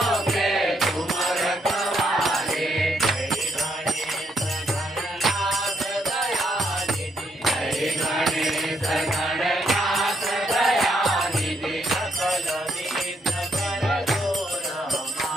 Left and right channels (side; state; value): both; normal; correlation 0.74